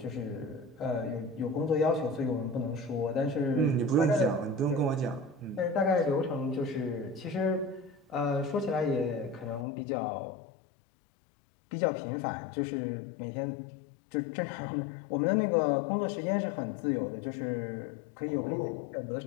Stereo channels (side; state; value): right; drops out; at 9.7 s